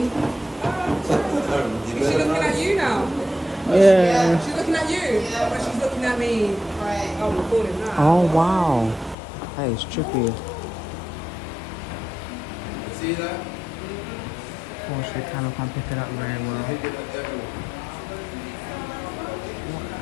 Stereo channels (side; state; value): right; drops out; at 9.2 s